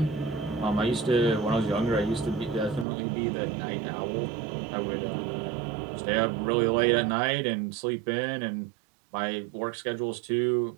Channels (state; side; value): drops out; left; at 2.9 s